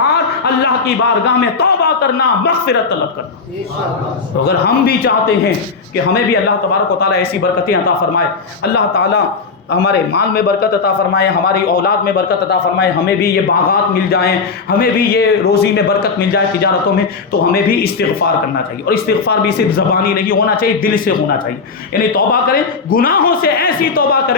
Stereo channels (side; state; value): right; quieter; 4.8 dB